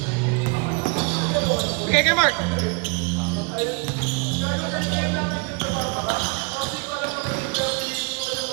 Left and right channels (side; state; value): left; quieter; 31.0 dB